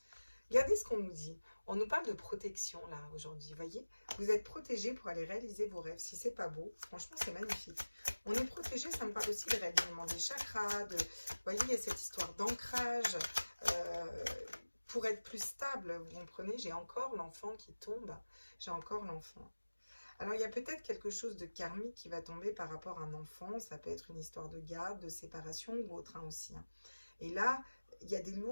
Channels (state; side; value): inverted; both; correlation -1.00